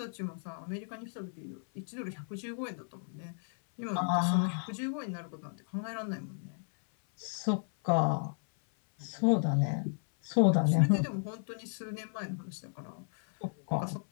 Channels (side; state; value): right; silent; 55 dB below the other